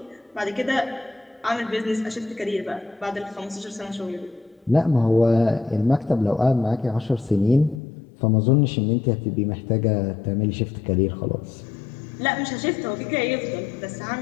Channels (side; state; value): right; drops out; at 7.8 s